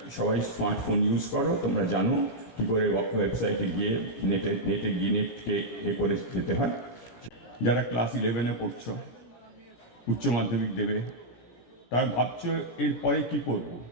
সবাই স্মার্টফোন ইউজ করো, তোমরা জানো কী করে ওয়েবসাইটে গিয়ে নেটকে করে যেতে হয়। যারা ক্লাস 11-এ পড়ছো, উচ্চ মাধ্যমিক দেবে, তার ভাবছো এরপরে কি করব।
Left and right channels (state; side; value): late; right; 17 ms